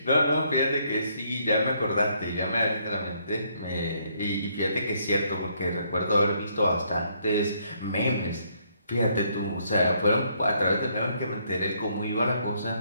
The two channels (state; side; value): inverted; both; correlation -0.70